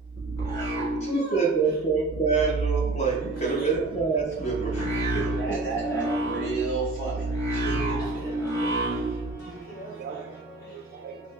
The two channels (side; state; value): left; quieter; 3.2 dB